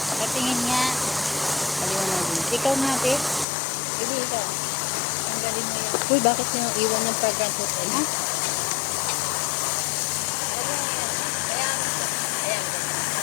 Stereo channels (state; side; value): drops out; right; at 3.5 s